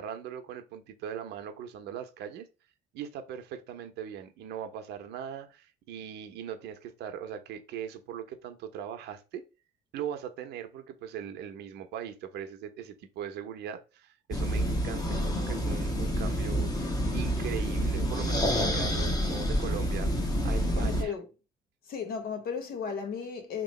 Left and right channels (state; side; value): normal; both; correlation 0.61